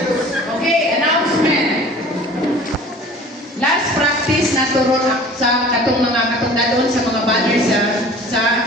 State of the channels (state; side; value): normal; both; correlation 0.45